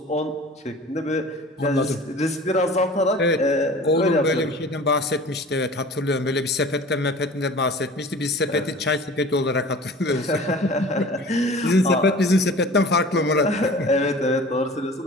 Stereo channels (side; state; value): both; normal; correlation 0.42